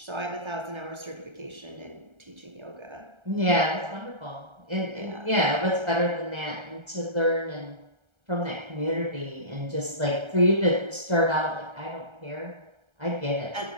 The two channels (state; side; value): late; left; 1.3 ms